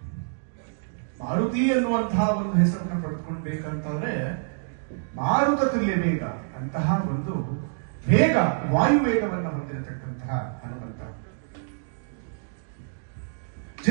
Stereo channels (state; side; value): silent; left; digital silence